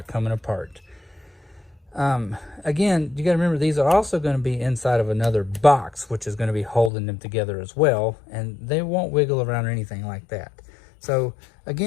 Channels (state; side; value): drops out; right; at 6.9 s